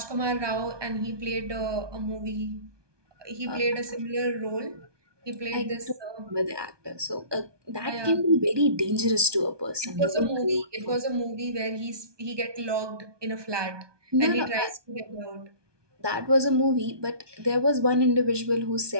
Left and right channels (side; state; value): left; late; 1.2 ms